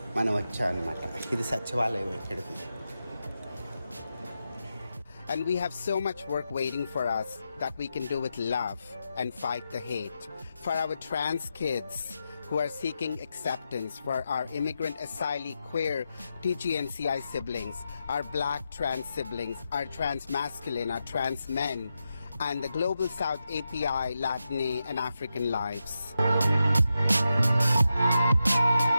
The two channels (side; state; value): both; inverted; correlation -0.88